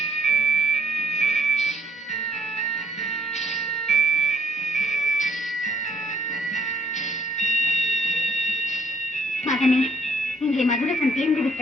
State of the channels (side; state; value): both; normal; correlation 0.66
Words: மகனே, இங்கே மதுரசம் தீர்ந்து